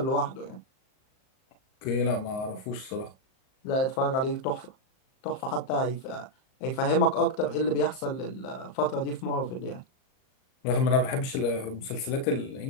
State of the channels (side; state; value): right; late; 38 ms